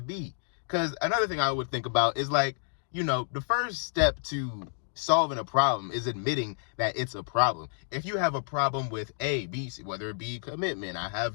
be. Because another thing I would think about is like, the first step to solving a problem is admitting that it's a problem. If you have a problem with A, B, C, whether it be commitment, I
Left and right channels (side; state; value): right; silent; digital silence